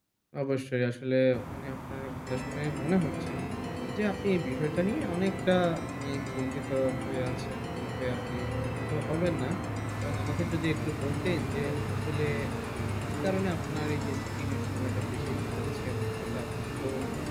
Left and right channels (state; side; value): identical; both; correlation 1.00